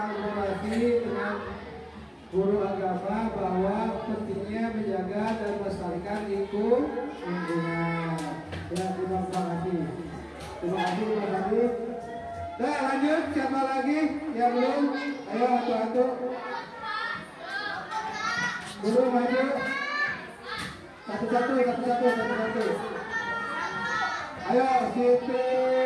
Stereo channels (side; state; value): both; identical; correlation 1.00